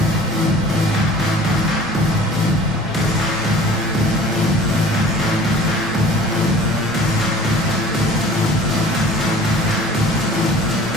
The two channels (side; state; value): both; normal; correlation 0.46